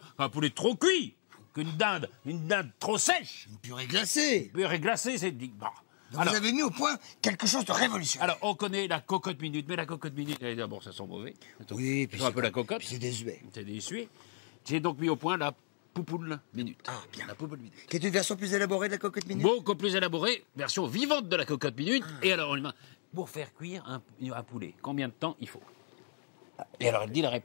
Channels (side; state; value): right; silent; 55 dB below the other